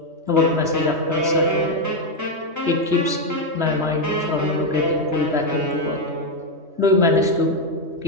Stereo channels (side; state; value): left; late; 3.2 ms